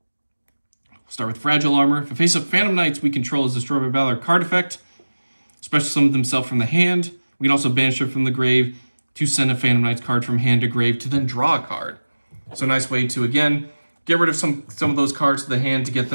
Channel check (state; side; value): inverted; both; correlation -1.00